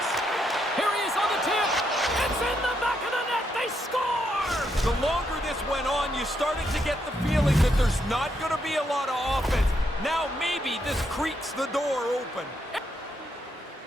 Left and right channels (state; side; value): normal; both; correlation 0.78